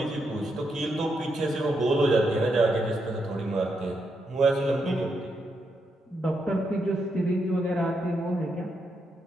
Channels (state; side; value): normal; both; correlation 0.81